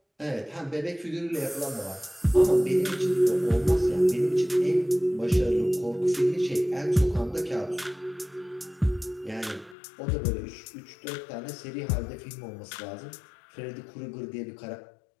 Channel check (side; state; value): right; drops out; at 9.8 s